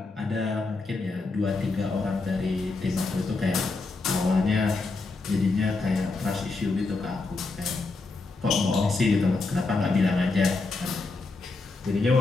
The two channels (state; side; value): quieter; right; 3.7 dB